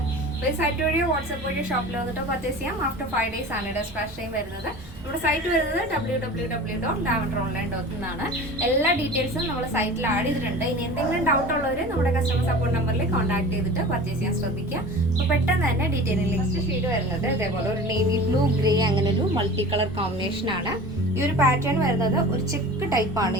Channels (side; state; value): both; normal; correlation 0.38